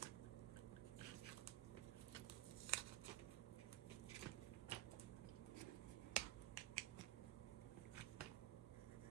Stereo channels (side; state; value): left; quieter; 15.2 dB